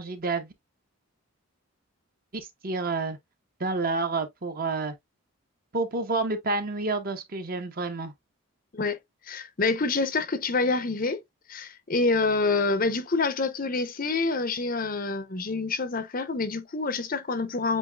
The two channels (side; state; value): both; normal; correlation 0.07